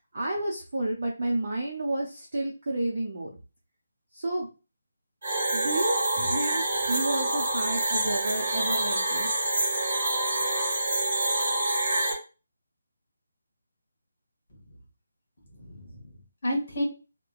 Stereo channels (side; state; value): both; inverted; correlation -0.87